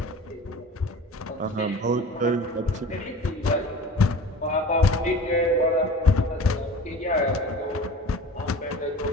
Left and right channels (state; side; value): normal; both; correlation 0.40